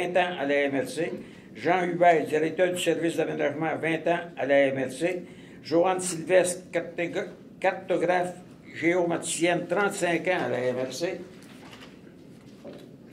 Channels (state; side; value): identical; both; correlation 1.00